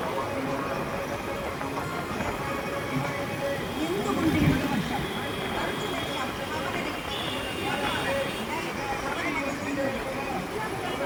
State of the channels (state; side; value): identical; both; correlation 1.00